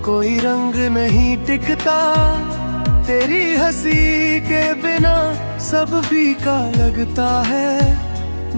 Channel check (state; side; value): inverted; both; correlation -1.00